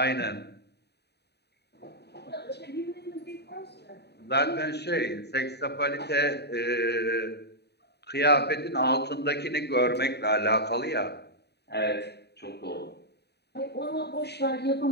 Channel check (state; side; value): late; right; 0.48 ms